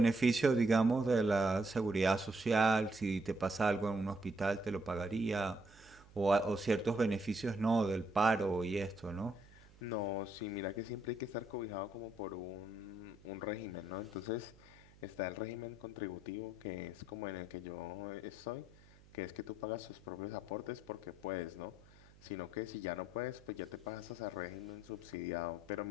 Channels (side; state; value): right; noise; hum, 24 dB below the sound